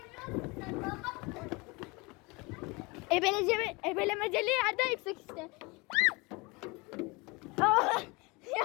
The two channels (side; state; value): right; quieter; 26.3 dB